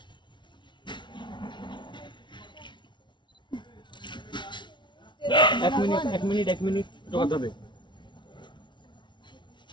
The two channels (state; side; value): late; right; 0.23 ms